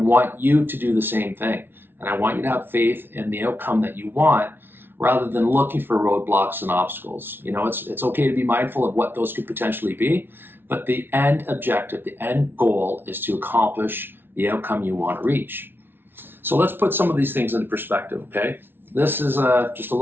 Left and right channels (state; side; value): late; left; 0.11 ms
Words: you to do the same thing. And I want you to have faith in the outcome that you want rather than looking for roadblocks and obstacles. It's okay to be mindful of what those could potentially be, but the end objective, the end goal is to accomplish the outcome you want to reach. So let's put some of these things into perspective, okay? This is just a